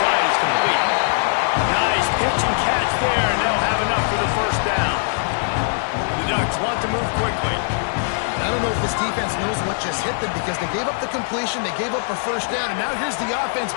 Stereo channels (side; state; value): right; silent; digital silence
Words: is complete. Nice pitch and catch there, and they'll have enough for the first down. The Ducks want to move quickly. I don't know if this defense knows what just hit them because they gave up the completion, they gave up a first down, and now here's the offense.